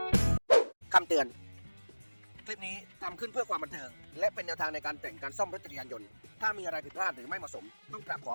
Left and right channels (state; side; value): inverted; both; correlation -1.00